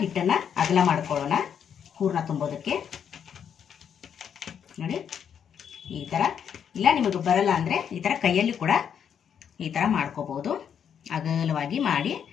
ಹಿಟ್ಟನ್ನು ಅಗಲ ಮಾಡ್ಕೊಳ್ಳೋಣ ಹೂರ್ಣ ತುಂಬೋದಕ್ಕೆ. ನೋಡಿ ಈ ಥರ, ಇಲ್ಲ ನಿಮಗೆ ಬರಲ್ಲ ಅಂದರೆ ಈ ಥರ ಕೈಯಲ್ಲಿ ಕೂಡ ಈ ಥರ ಮಾಡ್ಕೋಬೋದು. ಅಗಲವಾಗಿ ಮಾಡಿ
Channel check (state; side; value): quieter; right; 8.1 dB